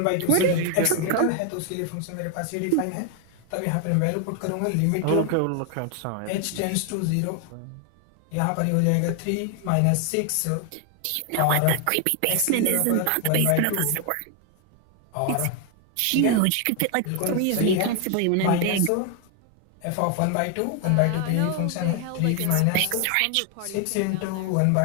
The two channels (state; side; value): different; both; correlation 0.00